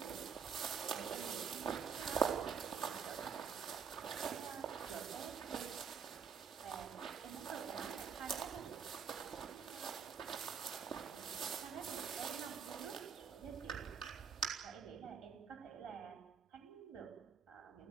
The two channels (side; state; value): left; quieter; 6.8 dB